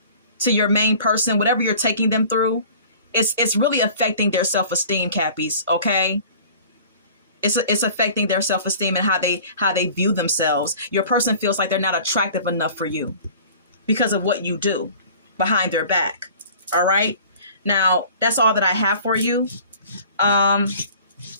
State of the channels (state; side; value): inverted; both; correlation -0.47